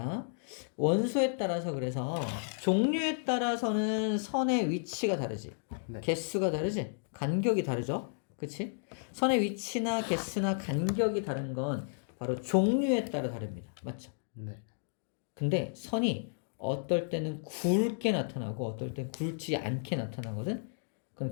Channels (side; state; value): right; silent; digital silence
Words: 원소에 따라서 그래서 종류에 따라서는 선의 위치가 다르지. 네. 개수가 다르지. 간격이 다르죠. 그치? 선의 위치나 개수나 간격이 다른 건 바로 종류에 따라 다릅니다. 맞죠? 네. 근데 선이 어떨 때는 굵게 나타나고 어떨 때는 굵지 않게 나타나거든. 그건